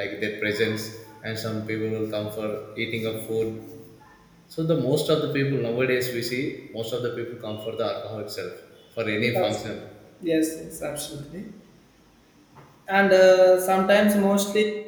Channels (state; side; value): identical; both; correlation 1.00